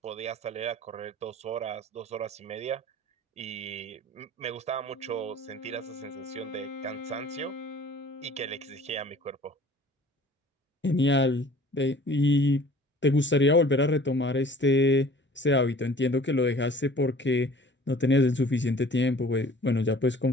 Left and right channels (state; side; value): normal; both; correlation 0.48